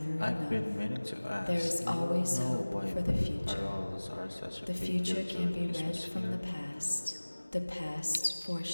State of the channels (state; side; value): inverted; both; correlation -1.00